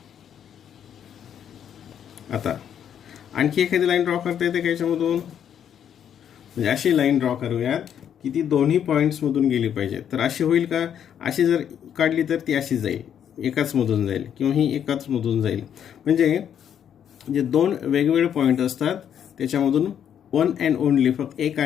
आता आणखी एखादी लाईन ड्रॉ करता येते का याच्यामधून, म्हणजे अशी लाईन ड्रॉ करूयात की ती दोन्ही पॉईंट्समधून गेली पाहिजे. तर अशी होईल का, अशी जर काढली तर ती अशी जाईल, एकाच मधून जाईल, किंवा ही एकाच मधून जाईल. म्हणजे जे दोन वेगवेगळे पॉईंट असतात त्याच्यामधून वन अँड ओनली फक्त एक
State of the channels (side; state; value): right; quieter; 9.1 dB